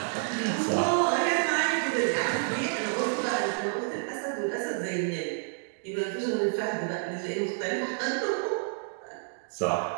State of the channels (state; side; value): silent; left; digital silence